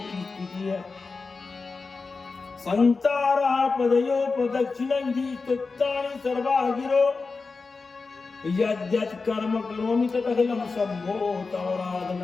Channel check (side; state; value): right; quieter; 4.3 dB